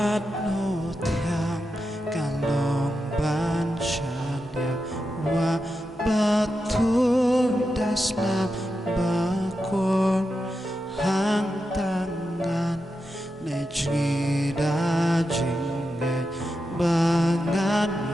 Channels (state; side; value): normal; both; correlation 0.88